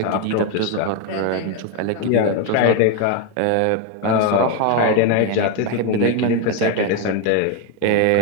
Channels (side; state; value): both; different; correlation 0.02